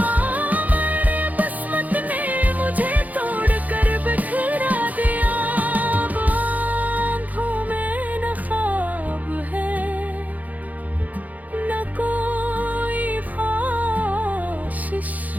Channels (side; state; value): left; late; 0.078 ms